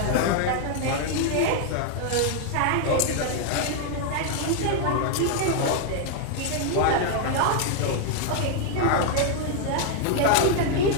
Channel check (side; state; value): both; different; correlation 0.00